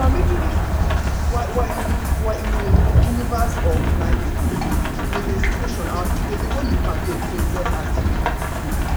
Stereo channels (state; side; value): identical; both; correlation 1.00